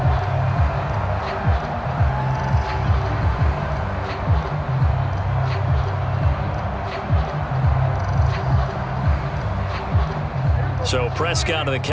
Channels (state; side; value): identical; both; correlation 1.00